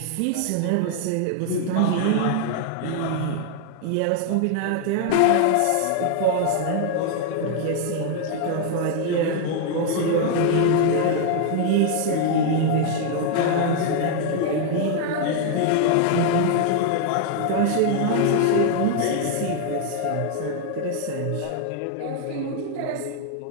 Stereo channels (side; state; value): both; different; correlation 0.00